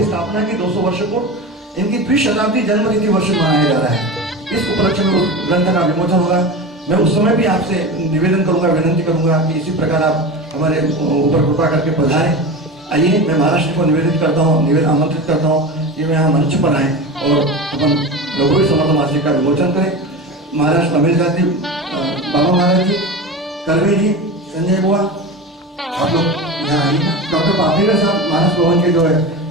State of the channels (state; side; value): normal; both; correlation 0.27